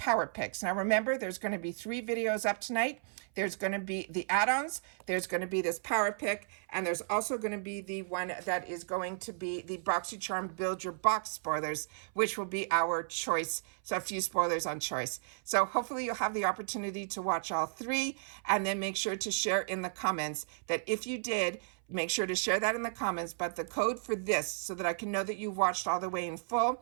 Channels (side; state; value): left; silent; 55 dB below the other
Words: Picks. Now remember, there's going to be 3 videos up tonight. There's going to be the add-ons, there's going to be this Power Pick, and there's also going to be the one that is going to be the Boxycharm Build Your Box spoilers, which will be our choice. So a few spoilers on choice. So hopefully you'll have the opportunity to watch all 3, and then make sure to share in the comments that if you did, make sure to share that in the comments. But the code for this, so that I can know that you watched all the way in